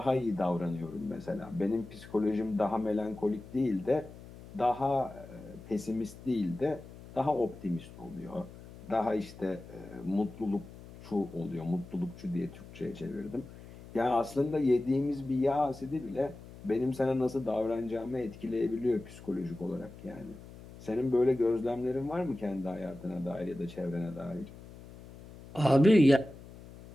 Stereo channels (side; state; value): left; noise; hum, 17 dB below the sound